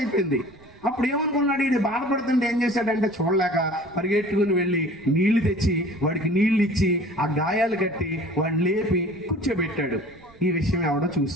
అయిపోయింది. అప్పుడు ఏమనుకున్నాడు, వీడు బాధపడుతుంటే ఏం చేశాడంటే చూడలేక పరిగెట్టుకుని వెళ్ళి నీళ్లు తెచ్చి వాడికి నీళ్లు ఇచ్చి ఆ గాయాలు కట్టి వాడిని లేపి కూర్చోబెట్టాడు. ఈ విషయం ఎవడో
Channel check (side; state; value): right; noise; rumble, 26 dB below the sound